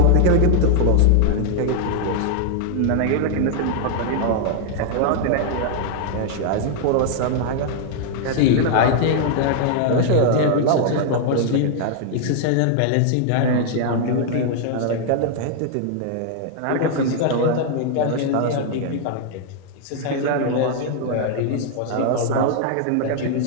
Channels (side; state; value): both; different; correlation 0.00